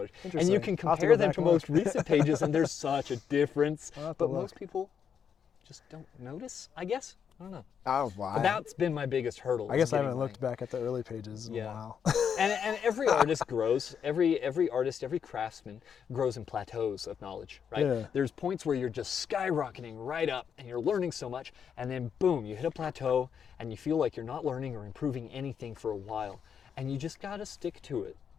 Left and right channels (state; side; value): quieter; right; 7.5 dB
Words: And you can compare them to most recent pages, and there's such a difference. But most people just don't notice, I guess. I don't know. Oh, wow. But that's been my biggest hurdle. I guess I haven't looked back at the early pages in a while. and every artist grows. Every artist, every craftsman grows in plateaus of knowledge, right? Yeah. There's points where you're just skyrocketing right up and you're learning so much, and then boom, you hit a plateau and you feel like you're not learning or improving anything for a while. And you just gotta stick to it,